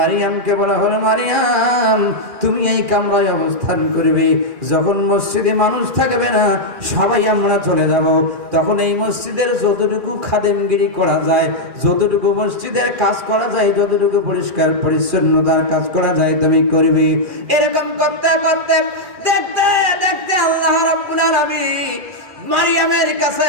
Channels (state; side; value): late; left; 2.4 ms